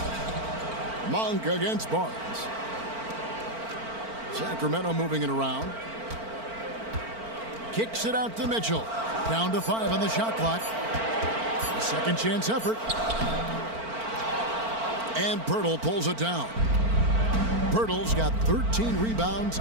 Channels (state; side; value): late; left; 4.4 ms